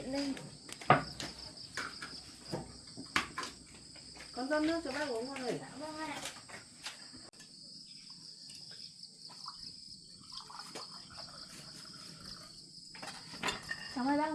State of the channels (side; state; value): both; identical; correlation 1.00